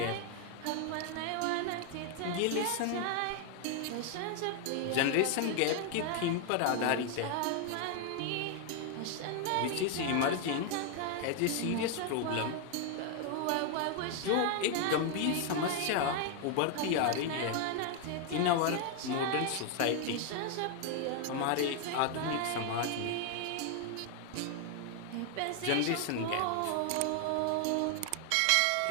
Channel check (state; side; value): different; both; correlation 0.01